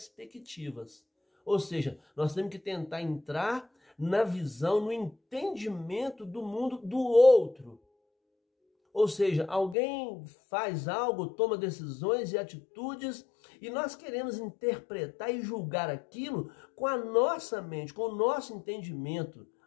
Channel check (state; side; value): drops out; right; at 9.8 s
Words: Ou seja, nós temos que tentar entrar na visão, no entendimento do mundo do outro. Ou seja, alguém faz algo, toma decisões e atitudes e nós queremos interpretar e julgar aquilo com a nossa mente, com o nosso entendimento.